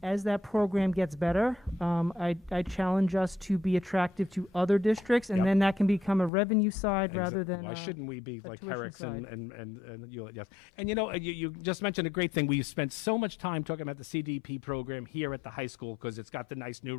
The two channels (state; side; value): drops out; right; at 6.3 s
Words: As that program gets better, I challenge us to be attractive to other districts, and Yep. then that can become a revenue side rather than Why shouldn't we be a like tuition Herrick's side. and Hewlett? Yes. And you just mentioned a great thing. We spent so much time talking about the CDP program here at the high school because it's got the nice new